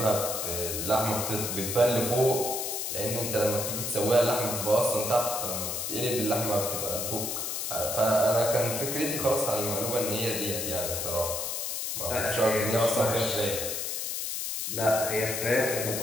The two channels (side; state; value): left; noise; hiss, 3 dB below the sound